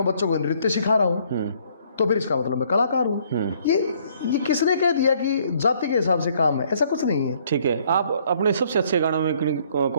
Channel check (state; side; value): inverted; both; correlation -0.64